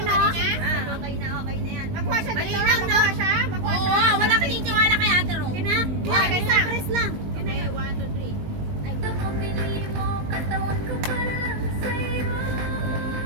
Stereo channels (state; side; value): late; left; 19 ms